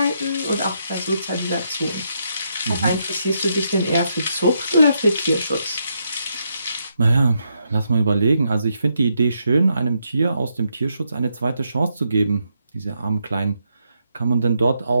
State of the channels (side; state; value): both; inverted; correlation -0.79